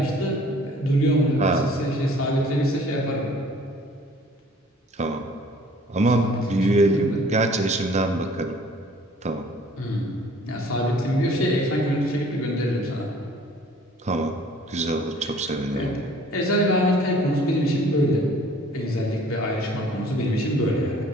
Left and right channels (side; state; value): both; normal; correlation 0.53